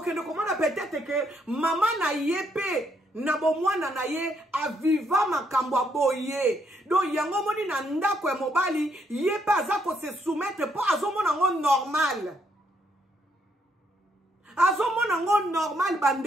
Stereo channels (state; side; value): normal; both; correlation 0.73